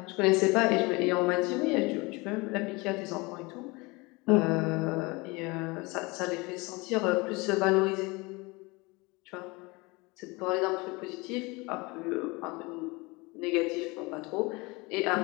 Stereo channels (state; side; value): quieter; right; 25.3 dB